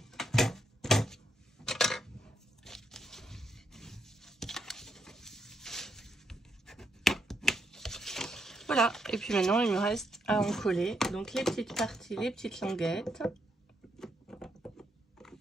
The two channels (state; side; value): normal; both; correlation 0.78